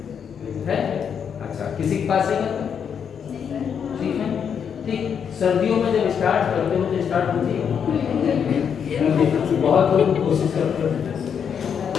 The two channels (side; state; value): right; quieter; 7.5 dB